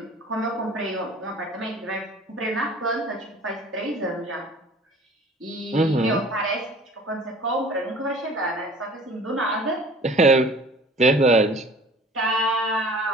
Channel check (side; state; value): both; normal; correlation 0.47